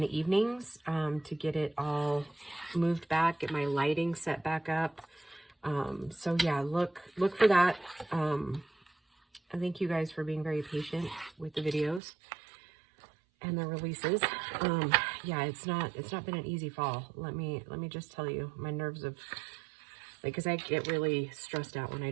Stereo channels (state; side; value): drops out; left; at 12.0 s